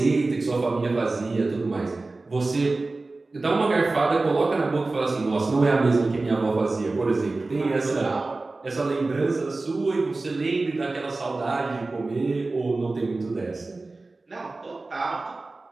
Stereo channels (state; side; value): quieter; left; 3.3 dB